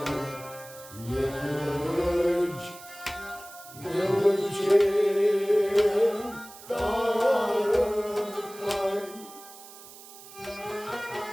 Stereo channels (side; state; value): right; noise; hiss, 18 dB below the sound